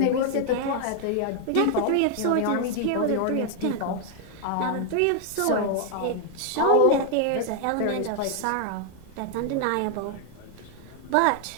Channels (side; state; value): both; different; correlation 0.00